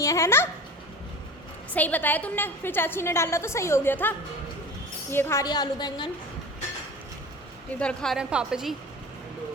है ना, सही बताया तुमने, फिर चाची ने डाला तो सही हो गया था। ये खा रही है आलू बैंगन, इधर खा रहे हैं पापा जी।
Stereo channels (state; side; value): normal; both; correlation 0.35